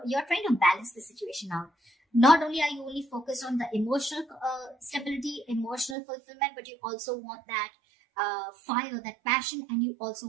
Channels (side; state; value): left; drops out; at 6.0 s